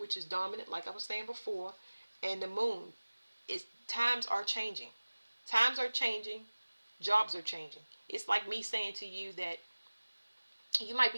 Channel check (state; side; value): inverted; both; correlation -1.00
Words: is dominant, like I was saying before, and the moon. Times are changing. Times are changing. Jobs are changing. It's like me saying to you that you might